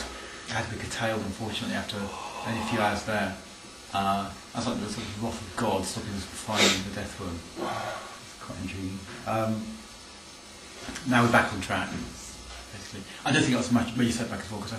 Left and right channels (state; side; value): identical; both; correlation 1.00